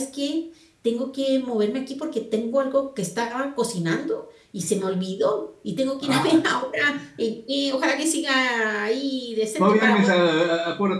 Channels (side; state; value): both; identical; correlation 1.00